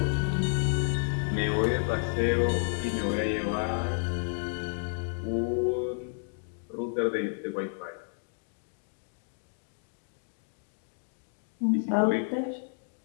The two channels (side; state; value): right; silent; digital silence